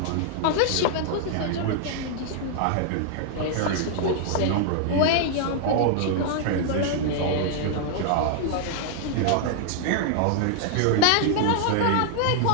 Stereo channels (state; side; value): different; both; correlation -0.01